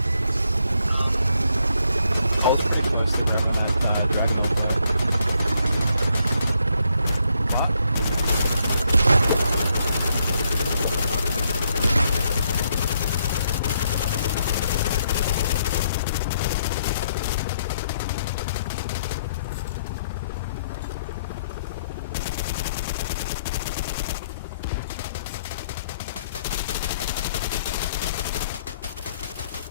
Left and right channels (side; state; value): both; inverted; correlation -0.73